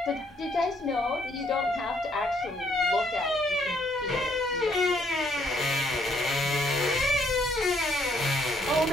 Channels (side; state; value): both; normal; correlation 0.69